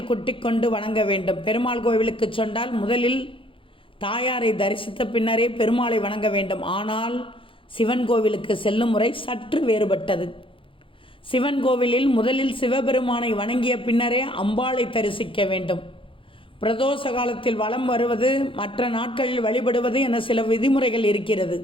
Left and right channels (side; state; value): right; late; 0.25 ms